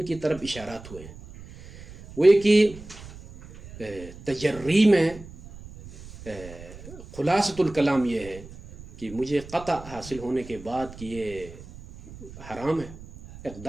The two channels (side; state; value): right; noise; rumble, 17 dB below the sound